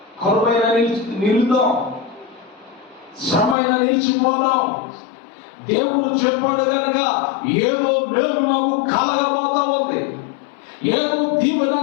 కరువైన నిలుద్దాం, శ్రమైన నిలిచిపోదాం. దేవుడు చెప్పాడు కనుక ఏదో మేలు నాకు కలగబోతా ఉంది, ఏదో దీవెన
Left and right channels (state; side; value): drops out; right; at 3.6 s